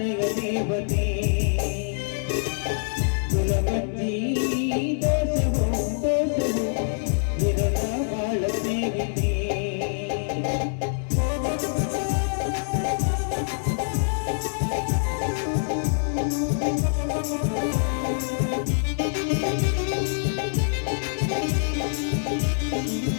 ದೇವತೆ, ಗುಲಮಂಜಿ ದೋಷವೋ ದೋಷವೋ ನಿರನ ಬಾಳ ಸ್ನೇಹಿತೆ.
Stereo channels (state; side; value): silent; right; digital silence